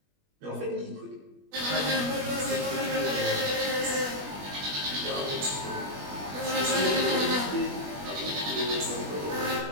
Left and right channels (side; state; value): left; late; 21 ms